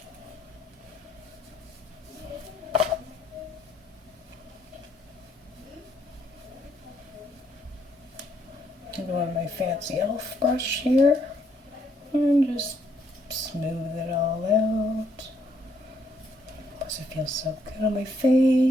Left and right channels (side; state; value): both; normal; correlation 0.71